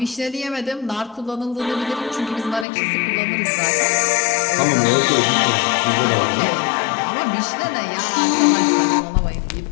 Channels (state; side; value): drops out; right; at 2.7 s